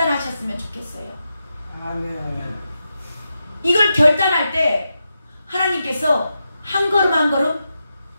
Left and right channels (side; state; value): both; inverted; correlation -0.88